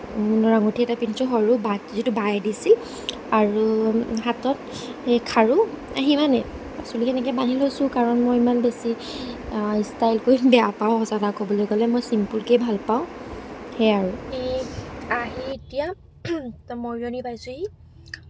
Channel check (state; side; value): identical; both; correlation 1.00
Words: সোণৰ আঙুঠি এটা পিন্ধিছোঁ সৰু যিটো বায়ে দিছিল আৰু হাতত সেই খাৰু সিমানেই চুলি এনেকৈ বান্ধি লৈছোঁ কাৰণ মই ইমান বেছি ষ্টাইল কৰি বেয়া পাওঁ সঁচা কথা ক'বলৈ গ'লে মই চিম্পুলকৈ ভাল পাওঁ সেয়াই আৰু এই আহি এতিয়া মৰিয়নি পাইছোঁহি